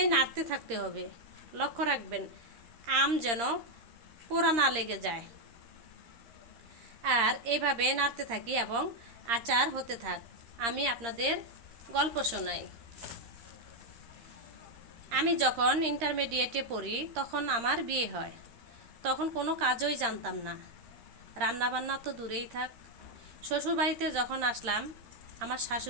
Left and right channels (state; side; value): late; left; 13 ms